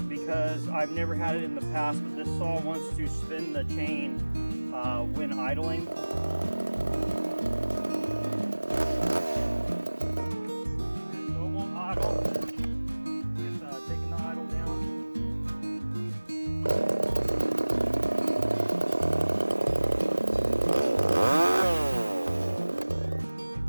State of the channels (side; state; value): both; inverted; correlation -1.00